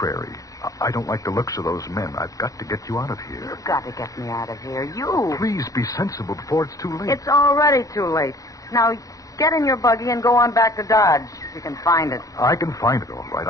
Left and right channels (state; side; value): late; right; 0.17 ms